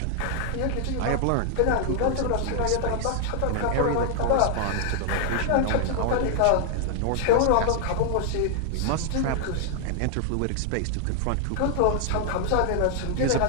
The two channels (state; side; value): different; both; correlation 0.00